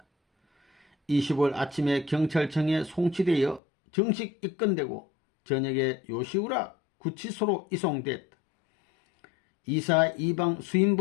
25일 아침에 경찰청에 송치되어 정식 입건되고 저녁에 요시우라 구치소로 이송됐다. 이사 이방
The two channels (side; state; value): right; drops out; at 3.6 s